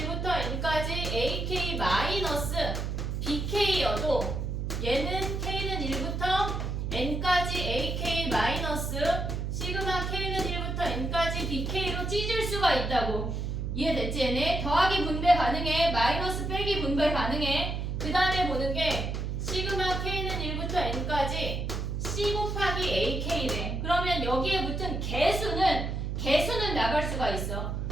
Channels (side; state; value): right; noise; hum, 2 dB below the sound